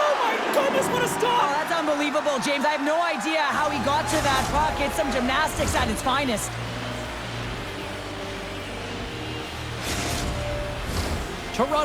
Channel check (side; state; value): both; identical; correlation 1.00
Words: my goodness, what a stop! Oh, that's unbelievable, James. I have no idea how he got to that puck. It's some gymnastics at its finest.